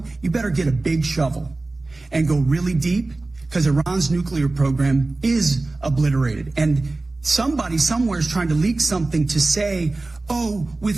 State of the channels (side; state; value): left; quieter; 3.2 dB